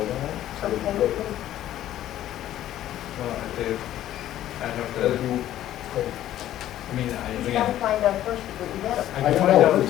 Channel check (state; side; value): quieter; right; 12.8 dB